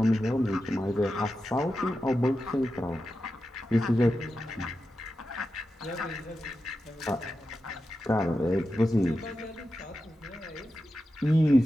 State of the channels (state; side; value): normal; both; correlation 0.90